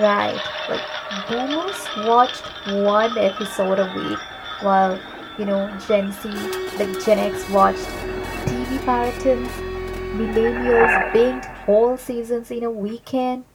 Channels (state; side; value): identical; both; correlation 1.00